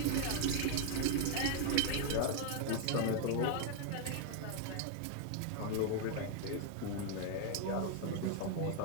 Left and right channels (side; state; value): both; different; correlation 0.00